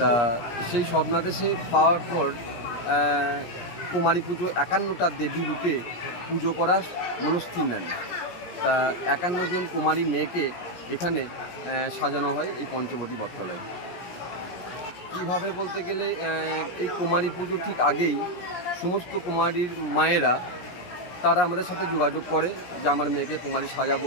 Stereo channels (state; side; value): late; right; 17 ms